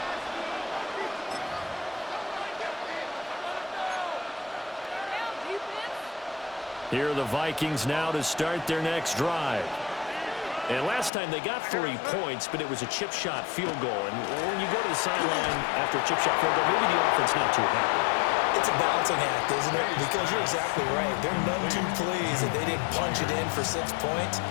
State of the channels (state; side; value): drops out; right; at 11.1 s